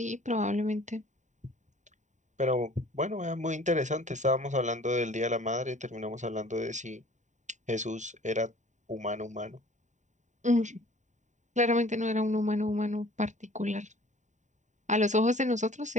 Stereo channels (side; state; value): left; late; 0.35 ms